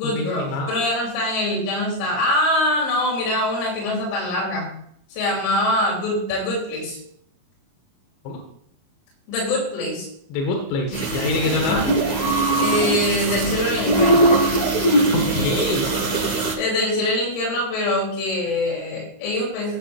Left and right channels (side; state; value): right; late; 22 ms